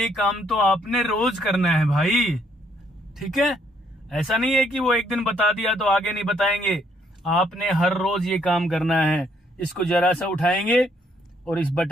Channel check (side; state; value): both; normal; correlation 0.69